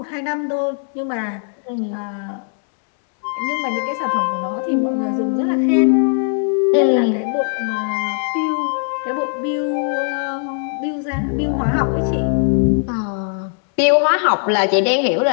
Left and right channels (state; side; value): silent; right; 61 dB below the other